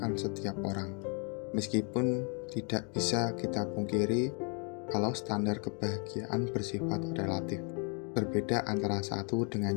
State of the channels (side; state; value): right; quieter; 37.9 dB